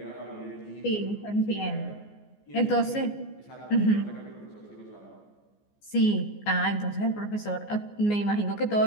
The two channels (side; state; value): right; late; 14 ms